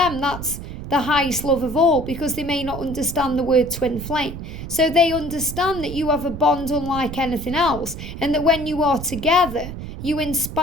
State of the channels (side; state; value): right; noise; rumble, 9 dB below the sound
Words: that's the highest love of all, because they may not understand the word twin flame. So they understand that you have a bond unlike anything else, and that when you are together, you